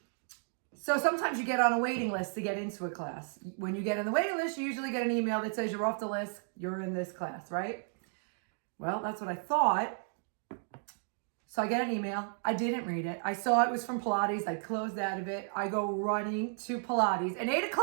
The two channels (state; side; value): silent; left; 56 dB below the other